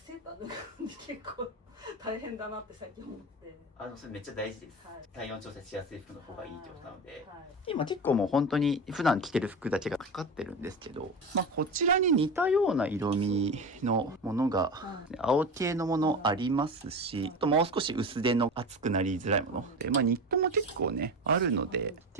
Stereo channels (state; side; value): normal; both; correlation 0.26